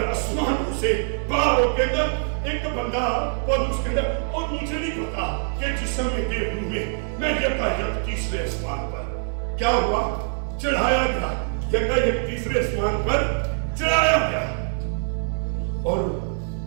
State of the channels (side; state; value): left; silent; 63 dB below the other